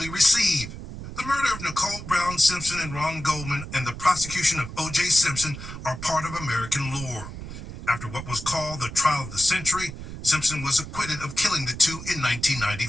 receive. The murder of Nicole Brown Simpson and Ron Goldman and the prosecution of O.J. Simpson are part of American lore. After what was called the trial of the century, Simpson was acquitted of killing the two in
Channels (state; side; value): noise; right; rumble, 10 dB below the sound